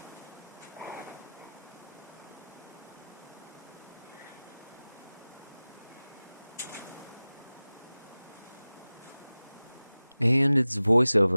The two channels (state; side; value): inverted; both; correlation -0.98